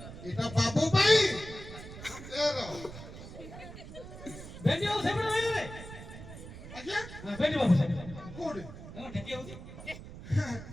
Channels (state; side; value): noise; right; rumble, 13 dB below the sound